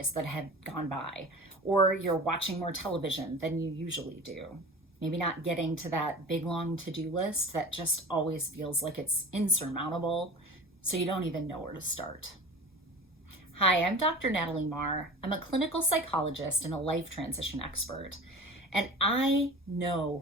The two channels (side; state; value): both; normal; correlation 0.37